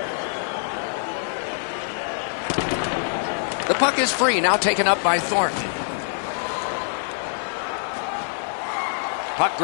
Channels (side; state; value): right; silent; 57 dB below the other